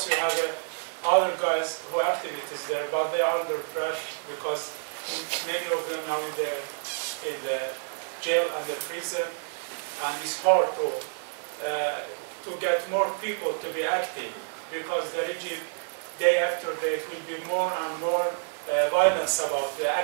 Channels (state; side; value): silent; left; digital silence